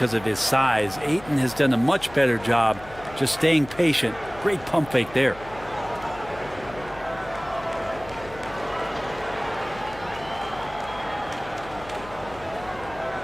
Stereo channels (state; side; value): noise; left; hum, 18 dB below the sound